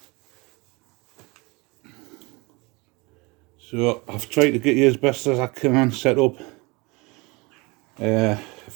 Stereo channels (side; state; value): left; quieter; 25.9 dB